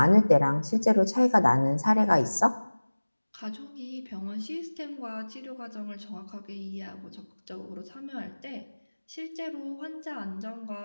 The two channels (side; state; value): both; inverted; correlation -1.00